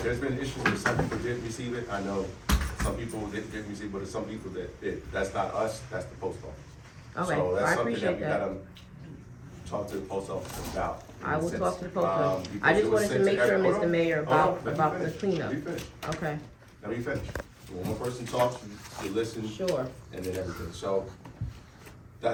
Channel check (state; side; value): identical; both; correlation 1.00